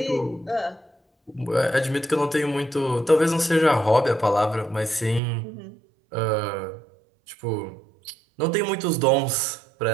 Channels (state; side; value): drops out; left; at 5.2 s